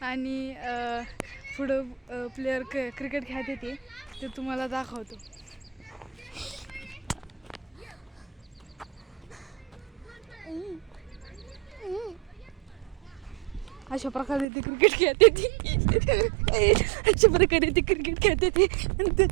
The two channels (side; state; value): left; drops out; at 14.5 s